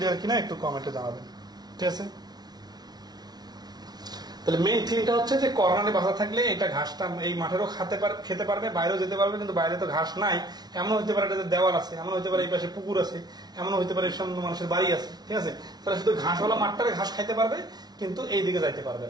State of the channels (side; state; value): left; late; 0.19 ms